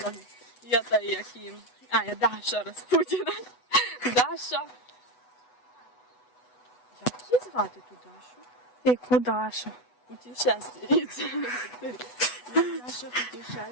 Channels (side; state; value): right; late; 8.1 ms